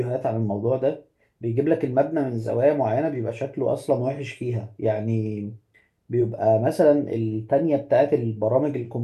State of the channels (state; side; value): identical; both; correlation 1.00